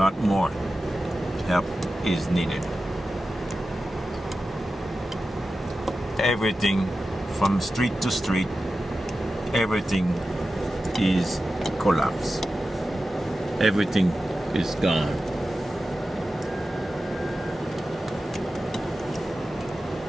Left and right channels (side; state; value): both; normal; correlation 0.93